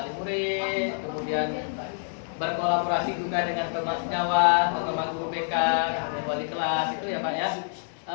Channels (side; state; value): right; silent; 60 dB below the other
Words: murid, kemudian berkolaborasi juga dengan teman sejawat atau teman guru BK, kemudian wali kelas itu ya Pak ya.